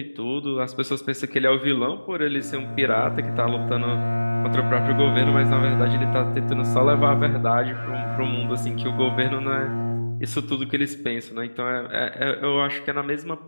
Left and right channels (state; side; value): inverted; both; correlation -1.00